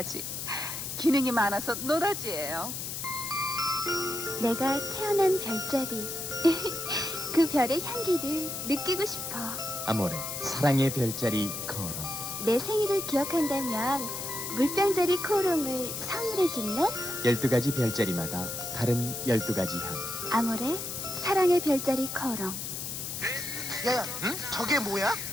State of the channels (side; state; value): left; noise; hiss, 5 dB below the sound